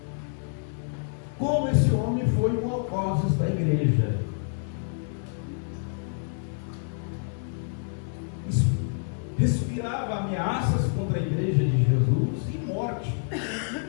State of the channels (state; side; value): silent; right; digital silence